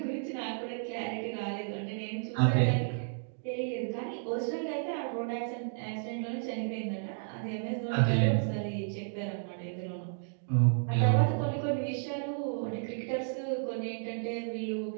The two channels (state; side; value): silent; left; digital silence